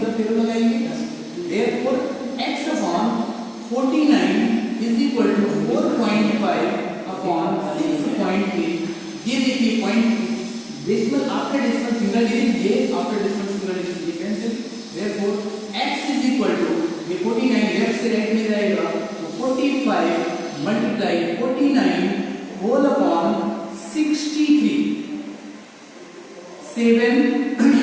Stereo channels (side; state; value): both; identical; correlation 1.00